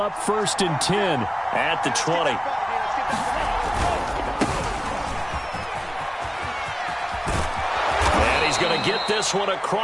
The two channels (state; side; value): identical; both; correlation 1.00